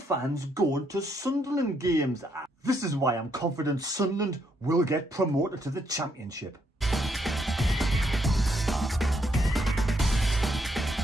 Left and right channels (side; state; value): both; normal; correlation 0.75